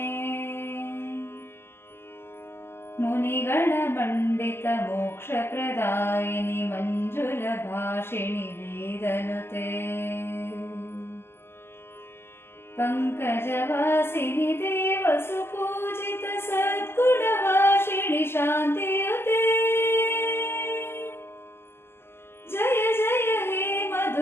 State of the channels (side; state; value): right; late; 0.11 ms